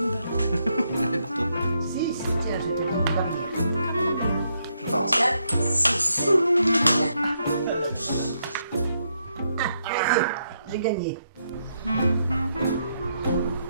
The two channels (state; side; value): inverted; both; correlation -0.78